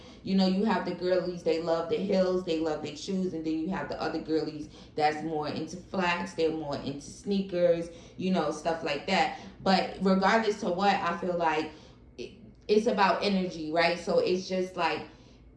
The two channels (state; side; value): identical; both; correlation 1.00